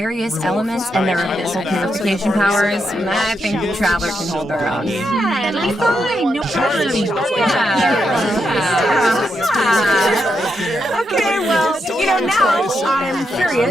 elements and their abyssal purification powers, I think the Traveler can hold their own. Yeah, it'll be fine. No problem. Okay, well, now I'm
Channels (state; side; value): normal; both; correlation 0.83